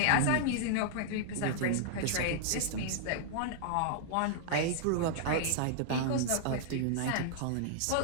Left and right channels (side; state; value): both; different; correlation -0.01